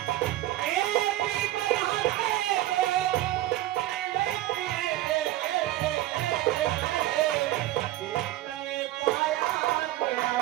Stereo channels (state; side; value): quieter; left; 15.3 dB